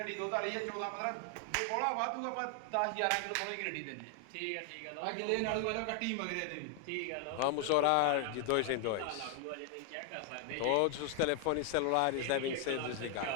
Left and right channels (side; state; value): both; different; correlation 0.00